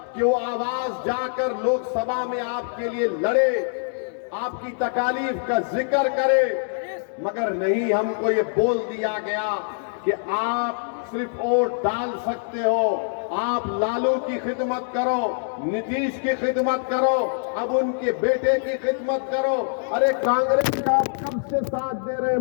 कि वो आवाज जाकर लोकसभा में आपके लिए लड़े, आपकी तकालीफ का जिक्र करे, मगर नहीं, हमको ये बोल दिया गया कि आप सिर्फ वोट डाल सकते हो, आप लालू की खिदमत करो, नीतीश की खिदमत करो, अब उनके बेटे की खिदमत करो। अरे कांग्रेस का आप कब से साथ दे रहे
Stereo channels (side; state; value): right; silent; digital silence